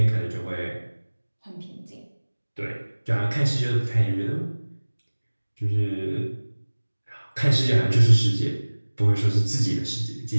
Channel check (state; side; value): inverted; both; correlation -1.00